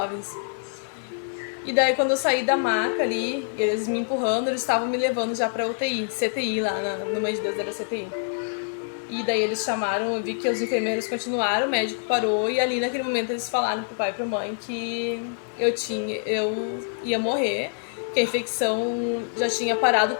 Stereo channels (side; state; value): right; silent; digital silence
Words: E daí quando eu saí da maca ali, eles me empurrando, eles estavam me levando já pra UTI, CTI lá, no Mãe de Deus era CTI. E daí eles chamaram, eu vi que os enfermeiros continuaram, o médico parou e ali naquele momento eles falaram pro pai e pra mãe que eu ia morrer, que a infecção já tinha parado